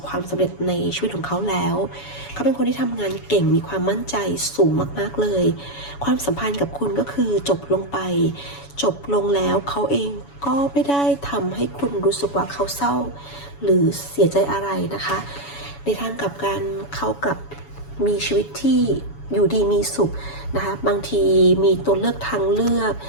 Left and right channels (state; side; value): late; right; 7.1 ms